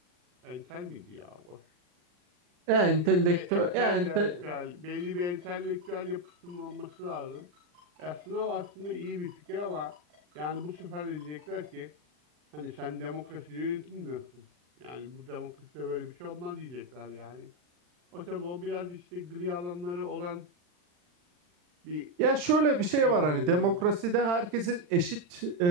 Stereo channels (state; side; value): late; left; 40 ms